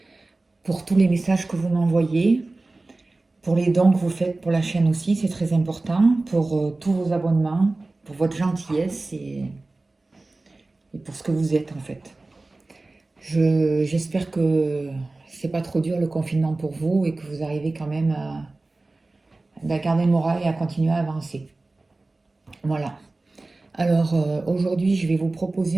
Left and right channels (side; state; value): left; quieter; 3.2 dB